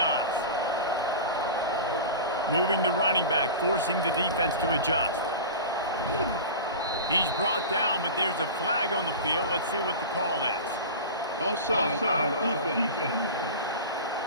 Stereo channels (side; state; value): both; inverted; correlation -0.30